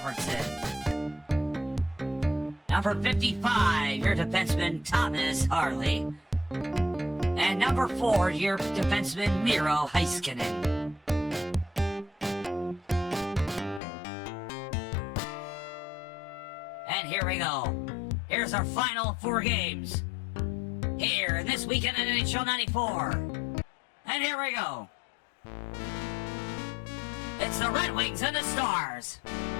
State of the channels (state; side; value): drops out; right; at 13.8 s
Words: Number 55, your defenseman, Thomas Harley. And number 4, your defenseman, Miro Heiskanen. And here we go. Here's our final 4 games. Here, This Weekend in NHL 94. And here we go. It's the Red Wings and the Stars.